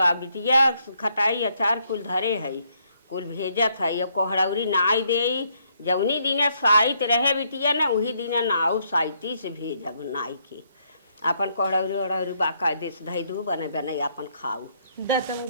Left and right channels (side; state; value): both; inverted; correlation -0.73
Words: बिटिया खटाई अचार कुल धरे है, कुल भेजत है। कोहड़ौरी नाई दे जवनी दिन साइत रहे बिटिया ना वही दिन नाऊ साइती से भेजब नाई के। अपन कोहड़ौरी ओहड़ौरी बाका देश धई दू बने बने अपन खाऊ।